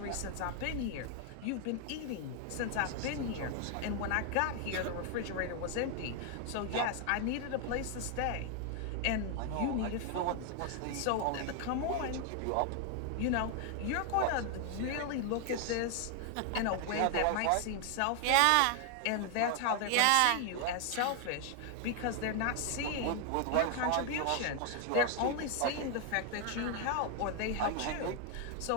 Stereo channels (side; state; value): both; different; correlation 0.00